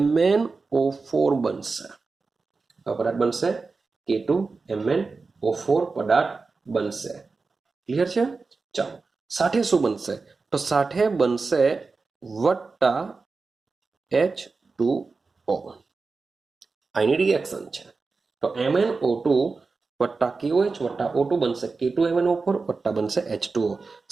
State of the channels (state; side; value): quieter; left; 4.2 dB